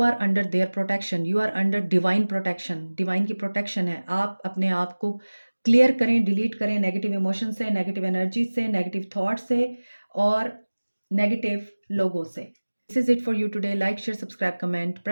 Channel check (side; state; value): both; inverted; correlation -1.00